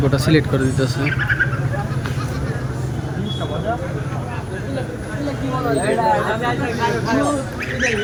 ওটা সিলেক্ট করে দিতেছে।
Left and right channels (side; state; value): both; identical; correlation 1.00